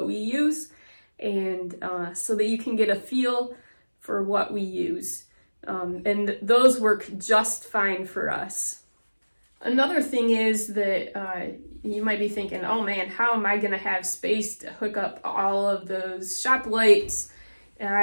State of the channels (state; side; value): inverted; both; correlation -1.00